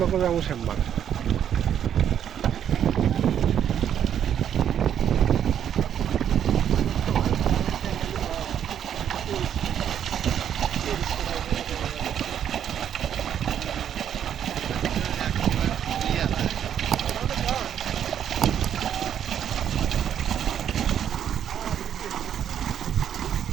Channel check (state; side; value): quieter; left; 9.4 dB